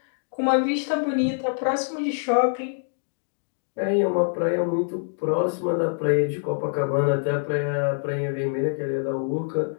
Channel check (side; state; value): right; silent; digital silence